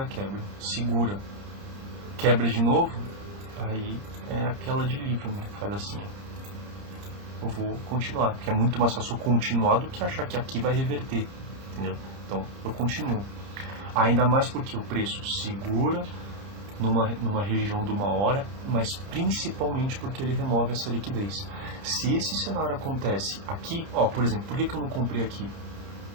quebra, segura, quebra de novo, aí é aquela de livro, né? Faz assim, eu vou continuar, porque é muito mais fácil continuar do que achar que aqui vai reverter, entendeu? Então eu continuo, ainda mais porque o preço segura numa região de 1 hora, mas principalmente porque ele remove essa liquidez. Se esse cenário acontece aqui, ó, por exemplo, por que eu não comprei aqui?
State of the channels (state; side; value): late; left; 30 ms